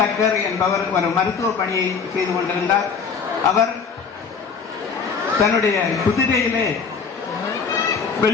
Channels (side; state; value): right; quieter; 5.8 dB